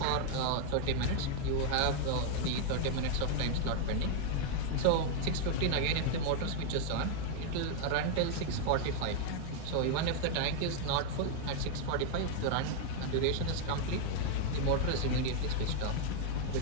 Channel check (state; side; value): different; both; correlation 0.00